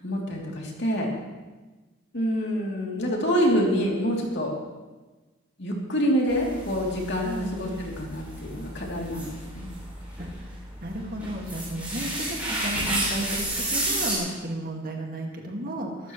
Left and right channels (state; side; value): normal; both; correlation 0.36